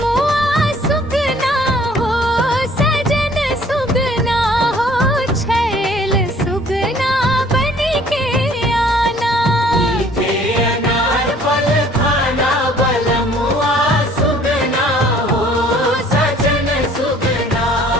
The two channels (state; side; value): normal; both; correlation 0.56